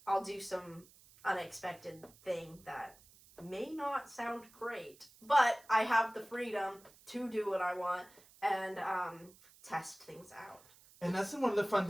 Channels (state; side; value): noise; right; hiss, 25 dB below the sound